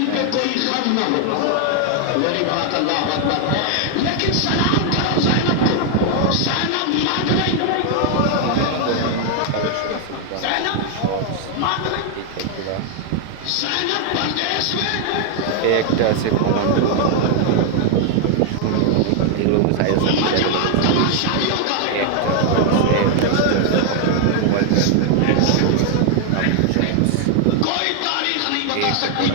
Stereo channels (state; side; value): different; both; correlation 0.00